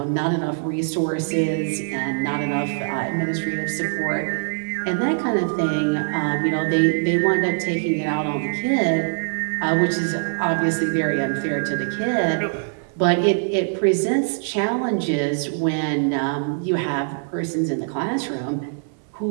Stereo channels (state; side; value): silent; left; digital silence